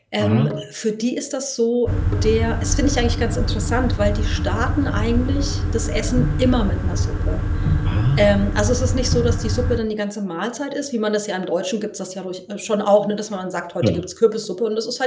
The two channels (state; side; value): identical; both; correlation 1.00